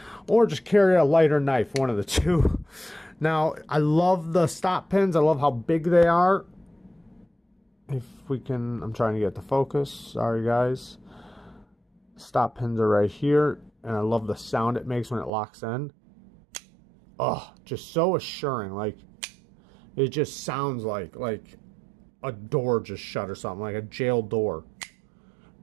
Or just carry a lighter knife, one of the two. Now, I love the stop pins. I love how big they are. If we can, I'm trying to get the focus. Sorry, guys. Stop pins are right here. And I love the sound it makes when it locks in. Oh, just so assuring. Like, it just sounds like a door just shut or something, like a jail door.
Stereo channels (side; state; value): left; drops out; at 15.3 s